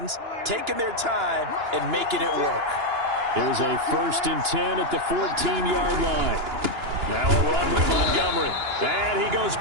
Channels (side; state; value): left; late; 2.9 ms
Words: taking their time, and making it work. Here's a 1st and 10 at the 14-yard line. Now a run And he goes